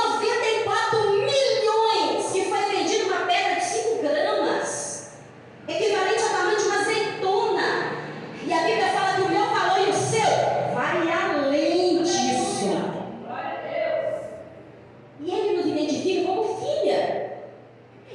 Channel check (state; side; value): identical; both; correlation 1.00